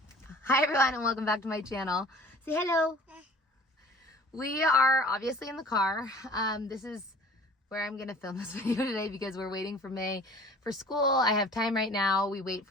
Hi everyone and welcome back to my channel. Say hello. We are obviously in the car. This is where I'm gonna film this video today because we're waiting for May for school. I have time right now. We wait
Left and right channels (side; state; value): both; normal; correlation 0.48